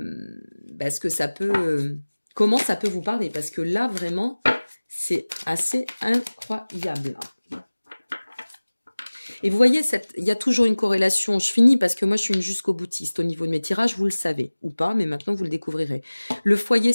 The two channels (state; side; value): inverted; both; correlation -1.00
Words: que ça peut, comment ça peut vous parler. Parce que là, vraiment, c'est assez incroyable. Et vous voyez, il y a toujours une corrélation. Je finis parce que moi, je suis une jusqu'au boutiste au niveau de mes tirages, vous le savez, ou pas, mais maintenant, vous le découvrirez. Le foyer,